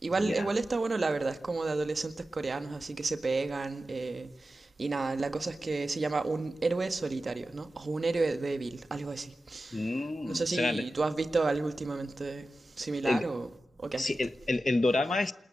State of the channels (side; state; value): both; normal; correlation 0.93